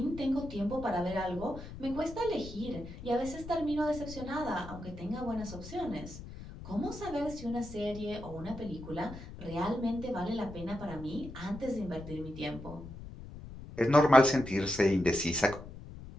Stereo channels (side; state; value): left; noise; rumble, 13 dB below the sound